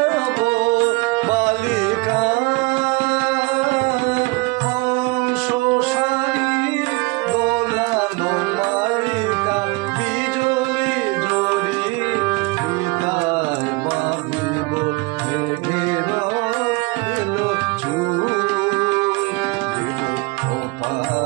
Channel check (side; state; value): left; quieter; 25.4 dB